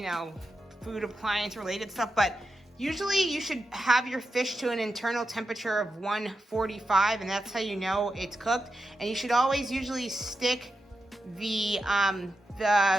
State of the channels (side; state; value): both; normal; correlation 0.89